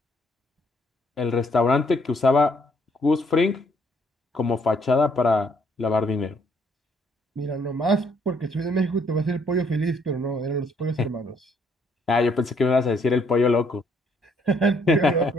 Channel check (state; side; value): normal; both; correlation 0.68